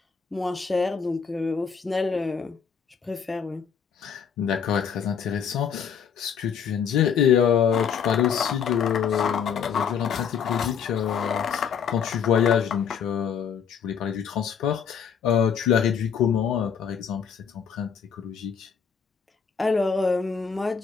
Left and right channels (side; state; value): right; quieter; 7.1 dB